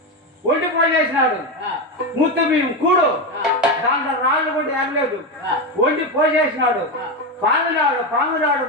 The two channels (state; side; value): normal; both; correlation 0.13